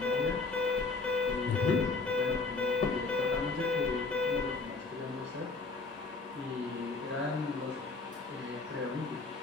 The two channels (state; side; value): quieter; right; 3.8 dB